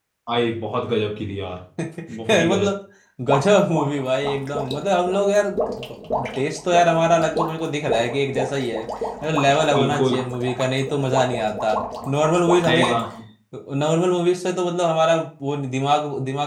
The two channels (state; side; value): identical; both; correlation 1.00